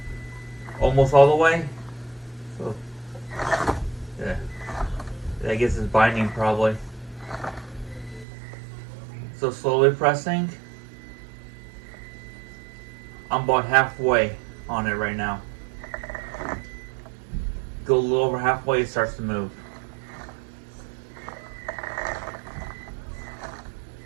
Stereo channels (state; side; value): drops out; left; at 8.2 s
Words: Almost all the way. So, yeah. I guess it's binding probably. So slowly pressing. I'm about halfway on it right now. Go a little over halfway, it starts to move.